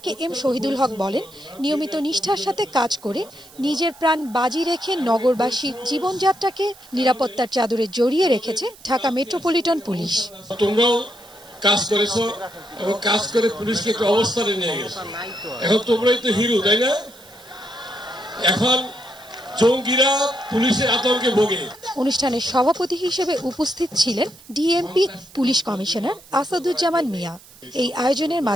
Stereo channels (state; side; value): noise; right; hiss, 23 dB below the sound